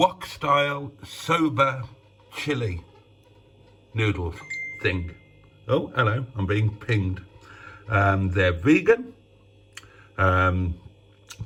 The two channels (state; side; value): identical; both; correlation 1.00